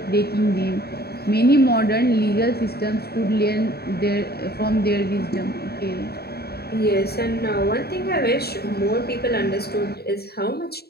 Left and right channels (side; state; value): right; late; 0.46 ms